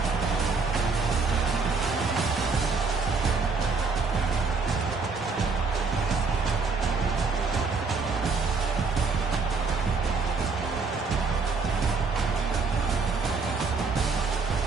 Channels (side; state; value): left; quieter; 4.5 dB